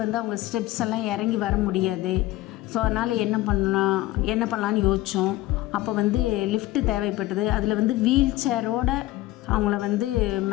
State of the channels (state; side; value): quieter; right; 17.0 dB